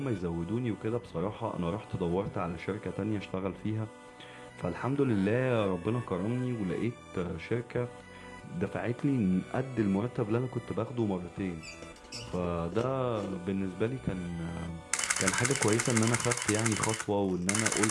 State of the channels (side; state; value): both; identical; correlation 1.00